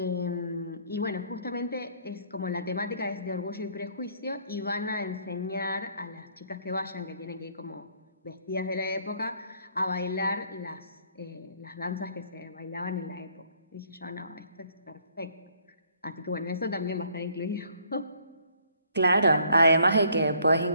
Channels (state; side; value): inverted; both; correlation -0.62